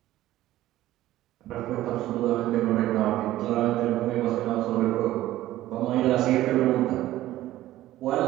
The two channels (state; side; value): quieter; left; 14.9 dB